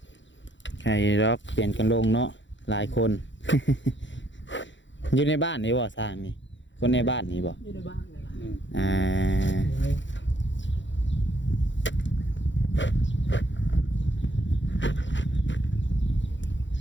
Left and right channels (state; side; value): late; right; 0.54 ms